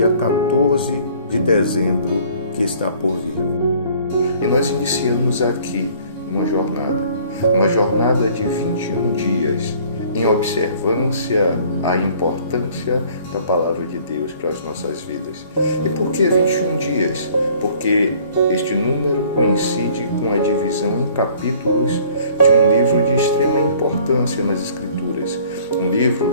14 de dezembro que está por vir. E nós iniciamos aqui uma jornada de 21 dias em observância à importância da Palavra de Deus para as nossas vidas. E por que 21 dias? Porque este número coincide com a divisão em capítulos de um livro de extrema importância nas Escrituras. Um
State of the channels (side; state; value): both; inverted; correlation -0.55